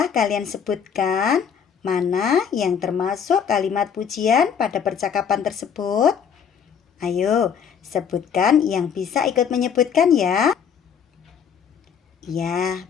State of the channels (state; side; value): quieter; right; 7.4 dB